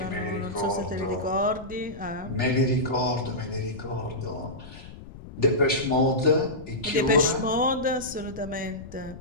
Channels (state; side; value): noise; left; rumble, 15 dB below the sound